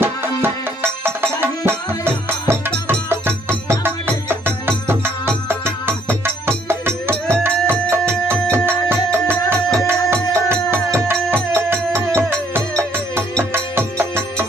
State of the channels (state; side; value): normal; both; correlation 0.65